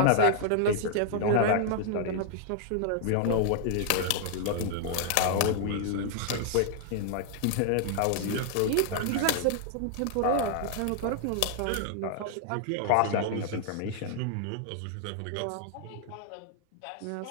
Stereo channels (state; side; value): different; both; correlation 0.00